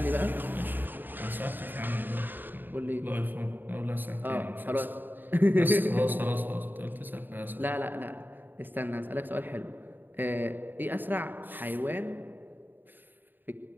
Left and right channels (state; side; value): late; left; 0.092 ms